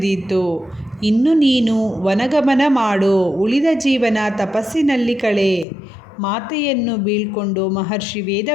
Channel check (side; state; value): right; drops out; at 5.7 s